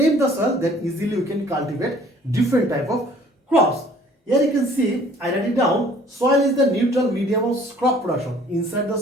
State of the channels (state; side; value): normal; both; correlation 0.55